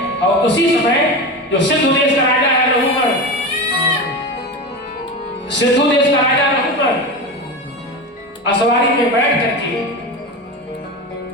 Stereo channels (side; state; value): both; normal; correlation 0.24